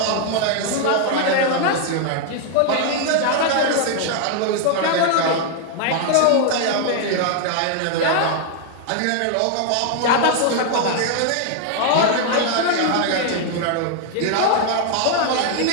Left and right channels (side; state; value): both; different; correlation 0.00